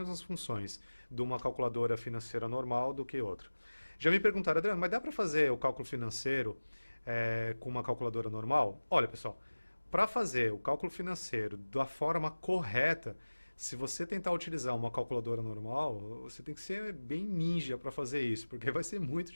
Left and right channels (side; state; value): both; inverted; correlation -1.00